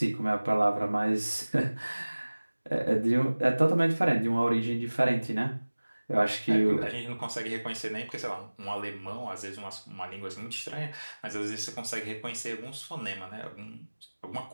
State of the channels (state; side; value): inverted; both; correlation -1.00